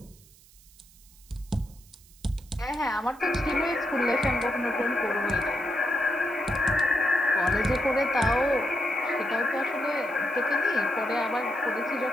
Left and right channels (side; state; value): right; noise; hiss, 26 dB below the sound